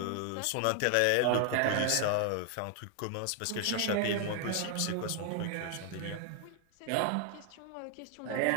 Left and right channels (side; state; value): both; different; correlation 0.00